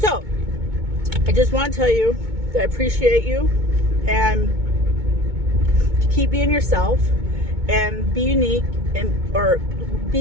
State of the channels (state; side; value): late; left; 2.2 ms